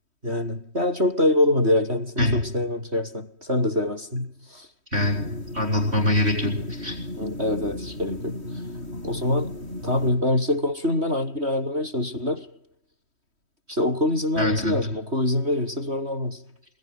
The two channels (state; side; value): late; left; 3.1 ms